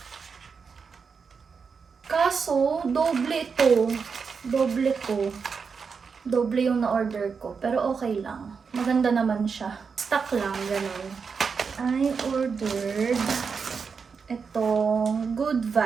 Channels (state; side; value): quieter; left; 5.6 dB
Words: Kaso, doble ito. Doble ko. Doble yung na-order ko. Pero okay lang. Maganda naman siya. Stock lang, ganun. I ordered itong Good